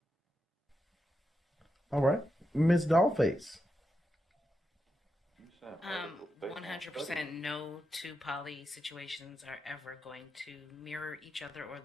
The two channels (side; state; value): both; normal; correlation 0.86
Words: All right, Miss Dollface. 100% 100% no two poly situations are ever going to mirror each other or